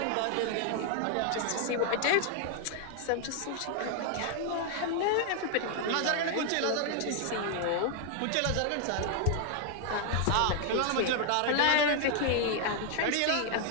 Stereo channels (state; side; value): different; both; correlation 0.00